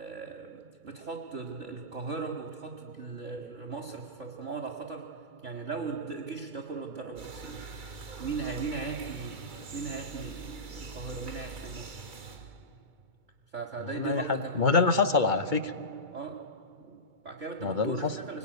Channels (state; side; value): late; left; 2.2 ms